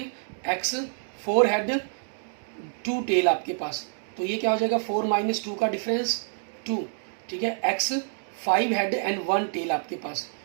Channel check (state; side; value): silent; left; digital silence